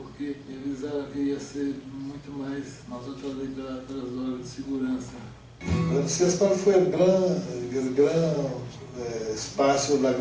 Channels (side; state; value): both; identical; correlation 1.00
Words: me avisaram que ia ser muito mais, nós outros ali pelas horas de segurança. O CESPAL foi o grande espaço, a